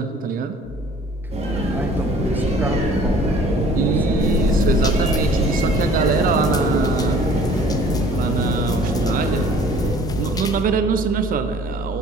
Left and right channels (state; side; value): normal; both; correlation 0.52